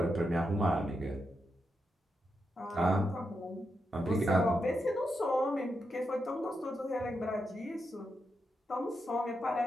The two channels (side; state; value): both; normal; correlation 0.85